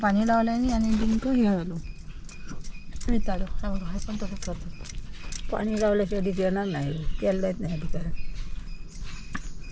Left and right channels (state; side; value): identical; both; correlation 1.00